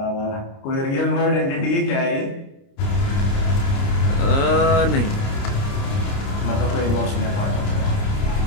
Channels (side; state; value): right; late; 29 ms